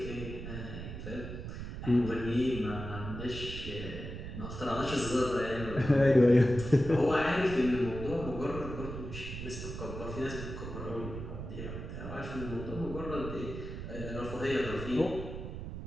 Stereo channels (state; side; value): noise; right; rumble, 8 dB below the sound